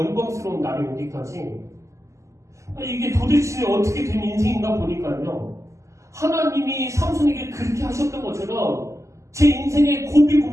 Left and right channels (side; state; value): left; late; 0.15 ms